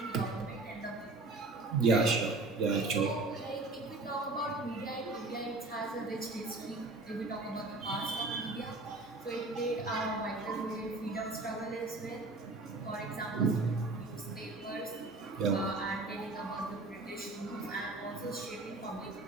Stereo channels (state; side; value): quieter; left; 3.2 dB